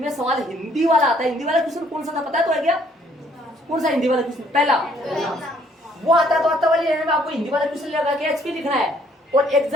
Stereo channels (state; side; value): normal; both; correlation 0.64